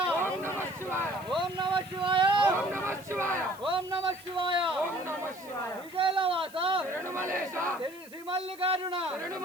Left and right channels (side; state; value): right; noise; hiss, 22 dB below the sound